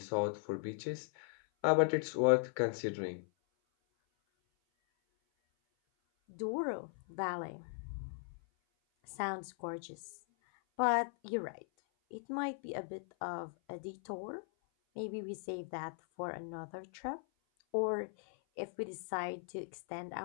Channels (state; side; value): silent; right; 52 dB below the other